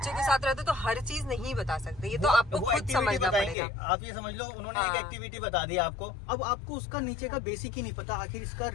के साथ रहते हो तो हर चीज नहीं बता सकते, ये तो आपको खुद समझना पड़ेगा। आप ये समझ लो उन्होंने एक एक्टिविटी बता दी आपको, अब आपको उसका नीचे का बेसिक ही नहीं पता, आखिर इसका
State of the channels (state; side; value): drops out; right; at 3.6 s